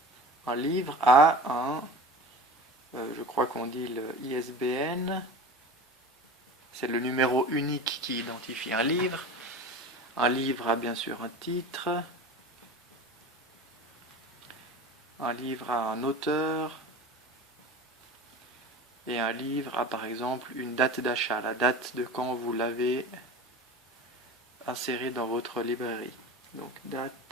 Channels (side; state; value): both; normal; correlation 0.35